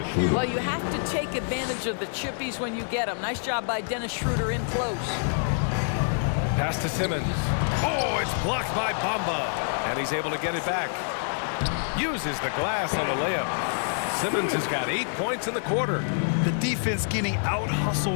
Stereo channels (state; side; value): silent; right; digital silence